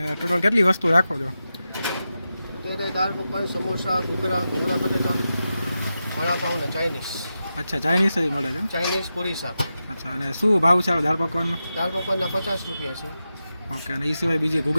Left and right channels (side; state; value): both; inverted; correlation -0.90